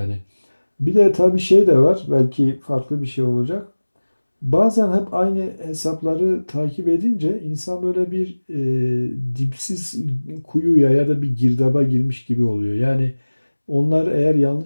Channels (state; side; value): inverted; both; correlation -1.00